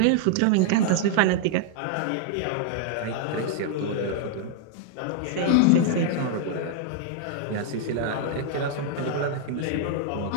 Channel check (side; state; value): both; different; correlation 0.00